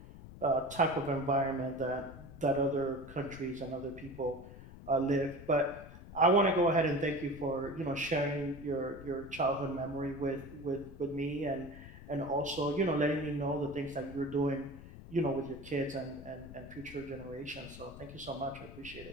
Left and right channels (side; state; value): left; noise; rumble, 15 dB below the sound